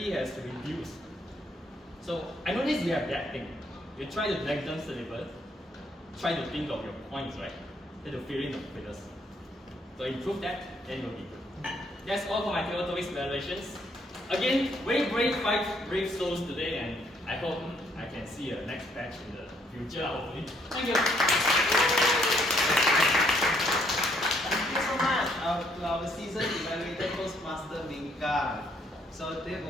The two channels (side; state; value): both; normal; correlation 0.69